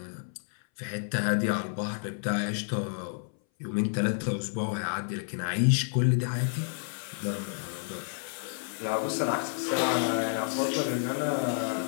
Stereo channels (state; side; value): silent; right; 58 dB below the other